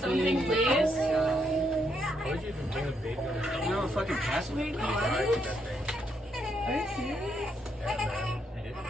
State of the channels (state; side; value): normal; both; correlation 0.76